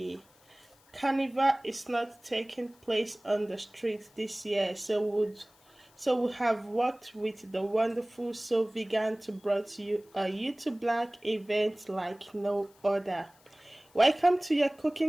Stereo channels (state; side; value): noise; left; hiss, 30 dB below the sound